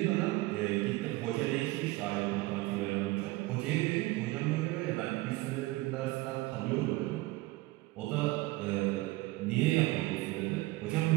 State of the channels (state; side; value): quieter; left; 20.3 dB